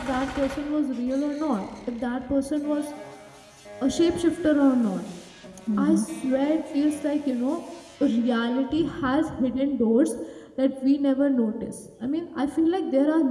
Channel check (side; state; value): both; identical; correlation 1.00